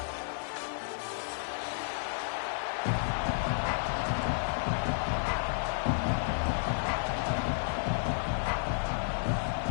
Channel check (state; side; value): silent; right; digital silence